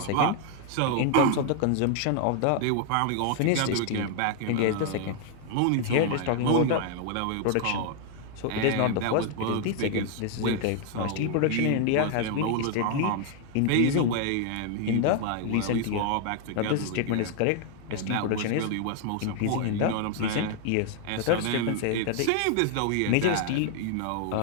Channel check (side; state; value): both; different; correlation 0.00